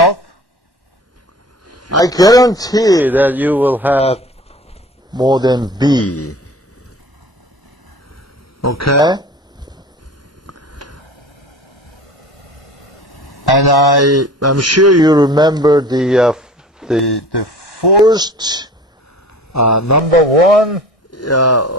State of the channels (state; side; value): normal; both; correlation 0.42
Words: I guarantee that you will have more than B. Okay? And I'm sure you remember the first number one